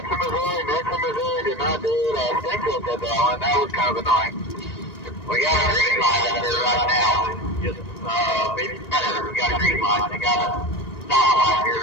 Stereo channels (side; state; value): right; late; 1.9 ms